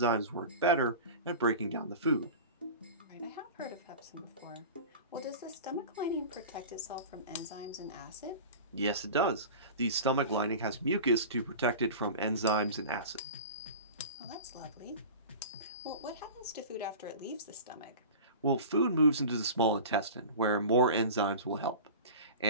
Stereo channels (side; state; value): both; inverted; correlation -0.34